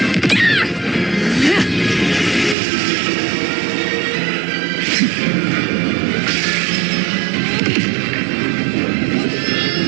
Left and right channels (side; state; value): left; drops out; at 2.6 s